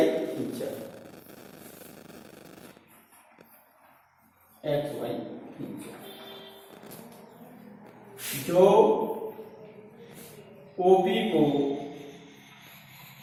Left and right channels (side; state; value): both; identical; correlation 1.00